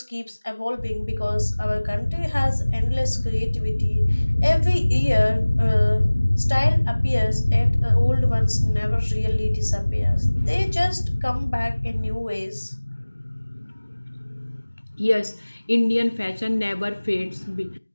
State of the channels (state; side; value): inverted; both; correlation -1.00